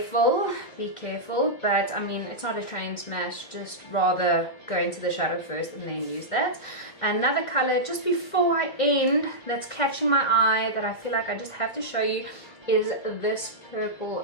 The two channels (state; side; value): late; right; 2.1 ms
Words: but I mean, it's not a train smash, just rather go into the shadow first and then use that. Another color, just before I end, that's catching my eye, that I feel like I just have to show you, is this purple